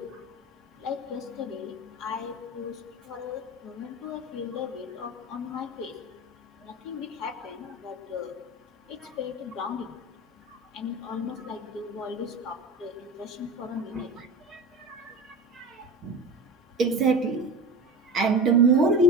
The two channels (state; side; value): normal; both; correlation 0.30